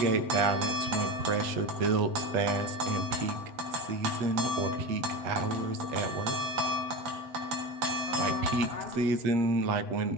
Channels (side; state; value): left; late; 7.8 ms